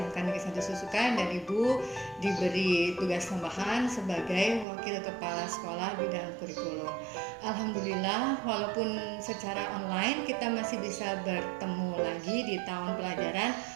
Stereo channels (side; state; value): left; drops out; at 4.7 s